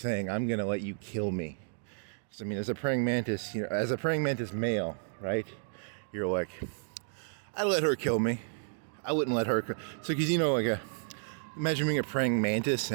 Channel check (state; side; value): silent; left; digital silence